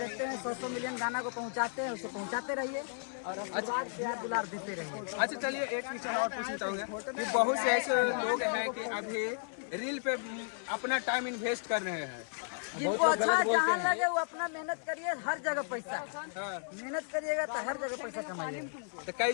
हैं 100 मिलियन गाना को पहुंचाते हैं, उसको पहुंचाते रहिए और उसके बाद प्यार दुलार देते रहिए। अच्छा चलिए एक क्वेश्चन और पूछना चाहूँगा कि बहुत से ऐसे लोग हैं कि अभी रील पे अपना टाइम इन्वेस्ट कर रहे हैं। जिनको अच्छा जहाँ लगे वो अपना मेहनत करिए, हर जगह पैसा मेहनत करिएगा तो हर जगह पैसा कमाइएगा। तो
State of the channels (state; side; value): silent; right; 55 dB below the other